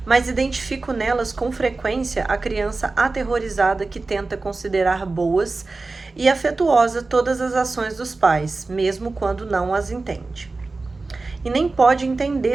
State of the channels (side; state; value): left; quieter; 3.6 dB